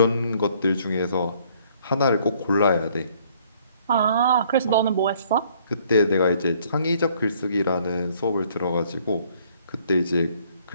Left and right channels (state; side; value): inverted; both; correlation -0.62